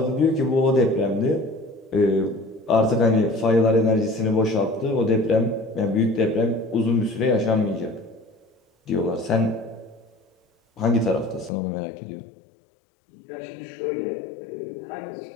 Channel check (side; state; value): right; drops out; at 11.5 s